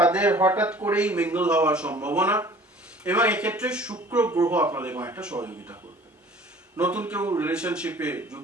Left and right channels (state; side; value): normal; both; correlation 0.49